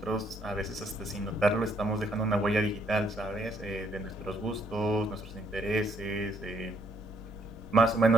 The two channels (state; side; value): normal; both; correlation 0.69